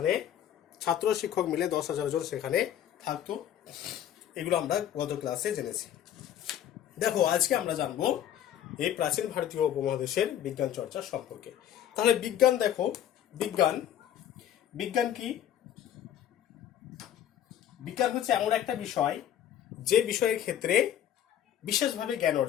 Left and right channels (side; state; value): right; quieter; 10.7 dB